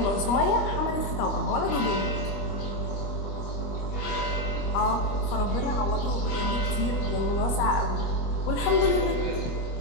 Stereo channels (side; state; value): right; late; 25 ms